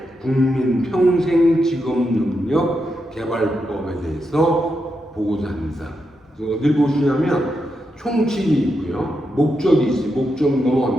국민 평생 직업 능력 개발법에 대해서 보고자 합니다. 어딜 보시냐면 총칙이 있고요, 목적이 있어요. 목적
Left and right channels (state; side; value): normal; both; correlation 0.85